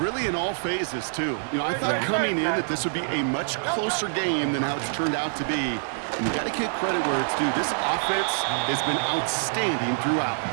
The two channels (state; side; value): silent; left; digital silence